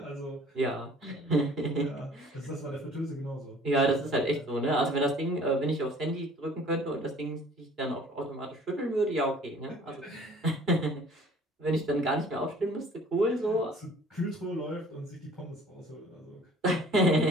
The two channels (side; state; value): both; normal; correlation 0.52